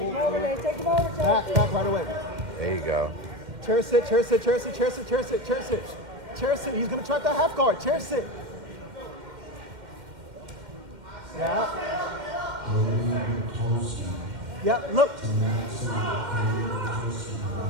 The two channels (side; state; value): left; late; 2.1 ms